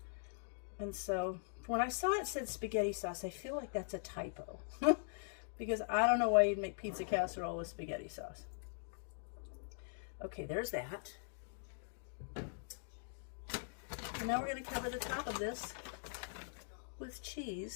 And so when I saw it said spaghetti sauce, I feel like that's a typo. Because I don't know why you'd make pizza casserole with spaghetti sauce. Okay, there's that. And now we're going to cover the top of this with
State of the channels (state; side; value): silent; right; digital silence